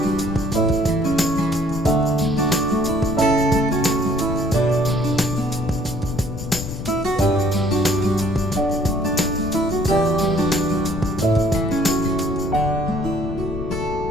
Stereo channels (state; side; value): noise; left; rumble, 7 dB below the sound